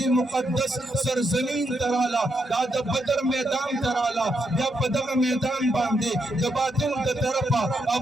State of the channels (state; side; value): normal; both; correlation 0.80